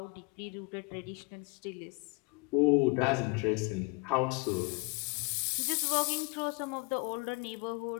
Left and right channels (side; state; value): right; quieter; 28.8 dB